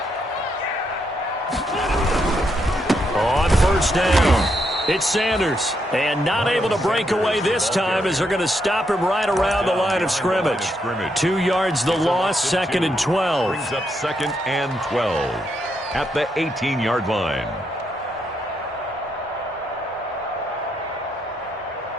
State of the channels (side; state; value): both; normal; correlation 0.78